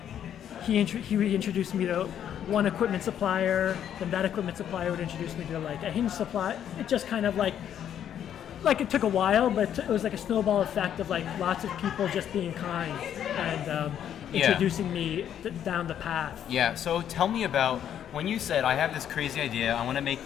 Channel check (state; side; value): quieter; right; 9.8 dB